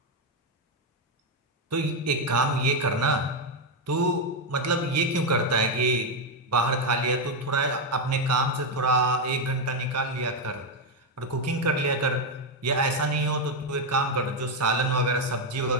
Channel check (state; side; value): normal; both; correlation 0.05